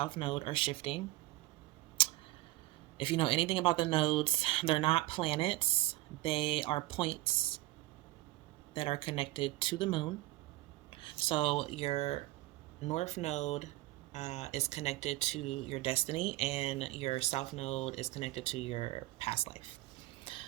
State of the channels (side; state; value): left; quieter; 18.4 dB